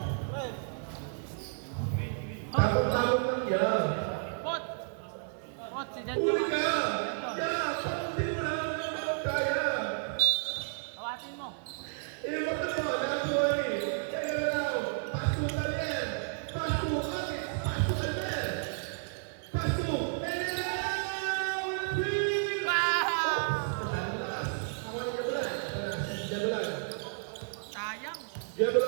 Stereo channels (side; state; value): left; silent; 56 dB below the other